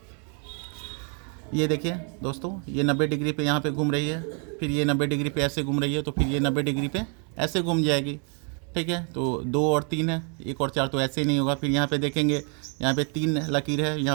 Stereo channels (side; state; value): left; quieter; 39.4 dB